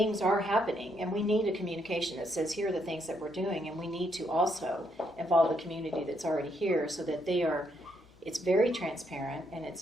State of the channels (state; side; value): normal; both; correlation 0.75